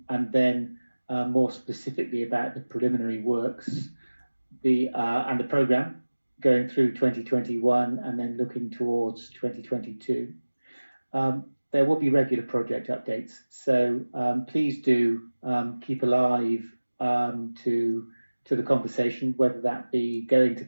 then more specifically about the preliminary works, and the programme going through 2021 and then looking towards 2022. There will be regular project updates, so please do keep alive to the conversation, whether that be going to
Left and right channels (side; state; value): both; inverted; correlation -1.00